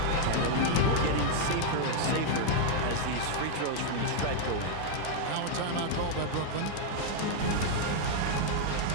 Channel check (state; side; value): different; both; correlation 0.00